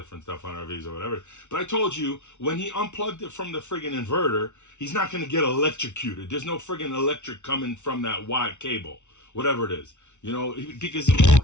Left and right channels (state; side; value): late; right; 0.83 ms